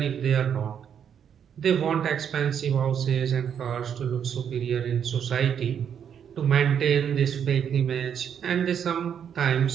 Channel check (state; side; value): quieter; left; 8.2 dB